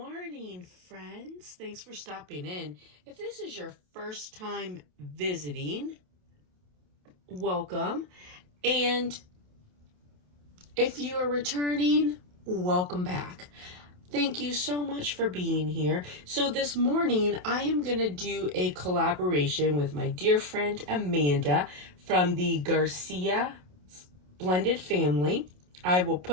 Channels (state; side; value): late; left; 27 ms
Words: friends. Thanks for stopping in. If this is your first time visiting, welcome. And if you are returning, welcome back. Thank you so much for being here. So this morning, I am going to do a collaboration with my dear friend Amanda from the Garcia blended family. I will